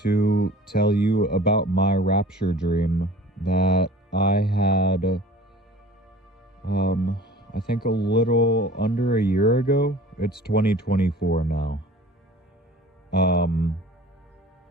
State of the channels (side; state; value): both; normal; correlation 0.44